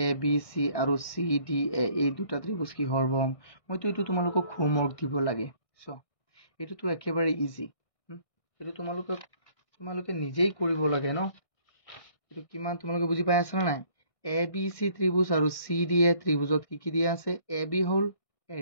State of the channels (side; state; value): right; late; 1.6 ms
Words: ABC আৰু CDA এই দুটা ত্ৰিভুজ কি সৰ্বসম মইতো এটো তোমালোকক হোমৱৰ্ক দিব লাগে সো এটো তো একেবাৰে ইজি এটো তোমালোকে নিজেই কৰিব লাগে ন এটো কিমান তোমালোকে বুজি পাই আছা না নাই ABC ত্ৰিভুজ আৰু CDA ত্ৰিভুজত কি দিয়া আছে AB হল